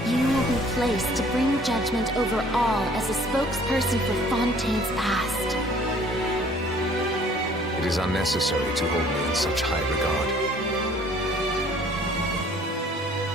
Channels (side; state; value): both; normal; correlation 0.55